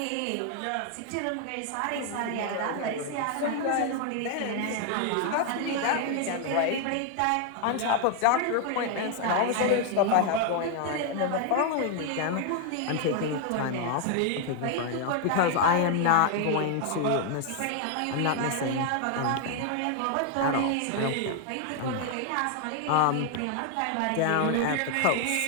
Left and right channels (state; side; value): different; both; correlation 0.01